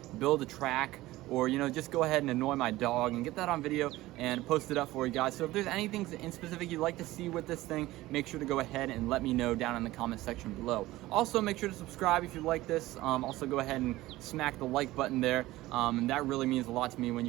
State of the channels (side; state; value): left; quieter; 17.5 dB